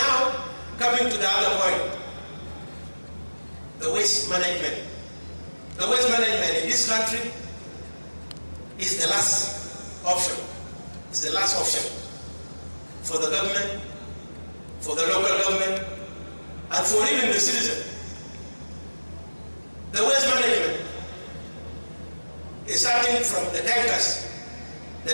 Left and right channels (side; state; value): both; inverted; correlation -1.00